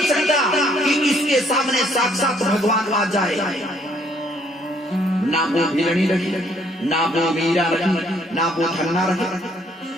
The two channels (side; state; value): both; normal; correlation 0.65